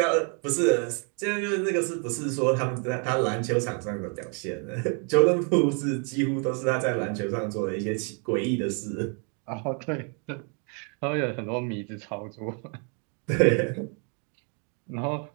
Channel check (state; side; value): quieter; left; 39.0 dB